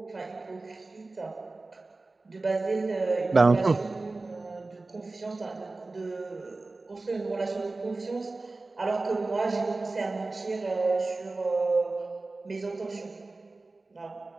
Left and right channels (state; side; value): quieter; left; 3.4 dB